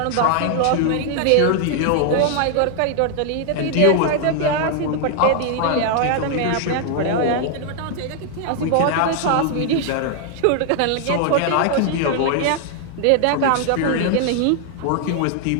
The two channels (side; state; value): both; different; correlation 0.00